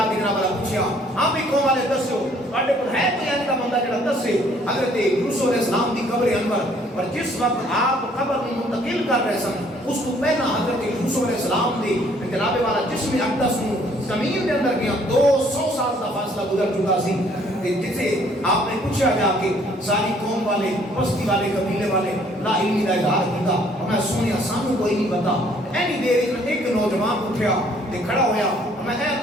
کے جناب والا پوچھیا ہاں بھی قوم والے دسو تواڈے کول ہے کوئی ایسا بندہ جڑا دسے حضرت یوسف علیہ السلام دی قبر انور اور جس وقت آپ قبر کو منتقل کر رہے سن اس کو پہلا حضرت یوسف علیہ السلام دی جناب والا جسم اقدس نو زمین دے اندر گیا 200 سال دا فاصلہ گزر چکا سی جسے آپ نے پوچھا جا کے ساری قوم والے بستی والے قبیلے والے لا علمی کا اظہار کیتا میں سنیا سانو کوئی نہیں پتا اینی دیر میں ایک نوجوان اٹھیا تے کھڑا ہویا میں اے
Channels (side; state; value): both; normal; correlation 0.61